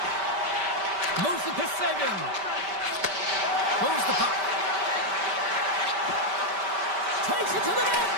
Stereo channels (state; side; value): late; left; 5.1 ms